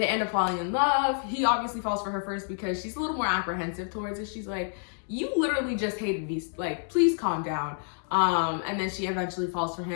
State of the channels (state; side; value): silent; right; 59 dB below the other